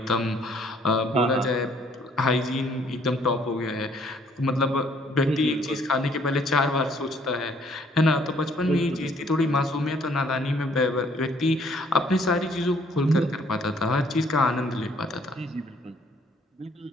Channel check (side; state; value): both; normal; correlation 0.63